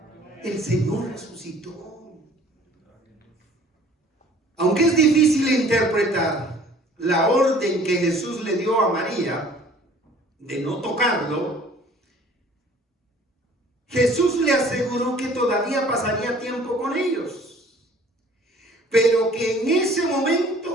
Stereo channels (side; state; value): both; normal; correlation 0.52